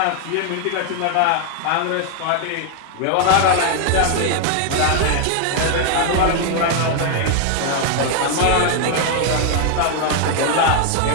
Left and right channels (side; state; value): both; different; correlation 0.00